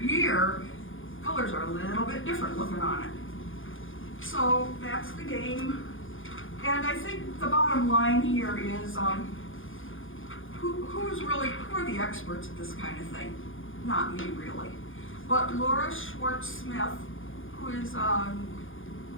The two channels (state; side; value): late; right; 0.58 ms